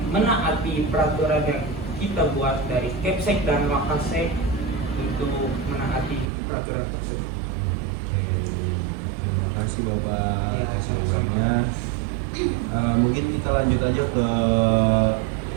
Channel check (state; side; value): drops out; left; at 6.3 s